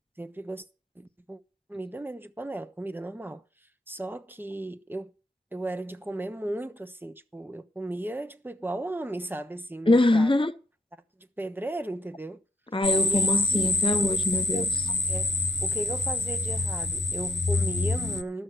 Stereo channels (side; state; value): both; normal; correlation 0.70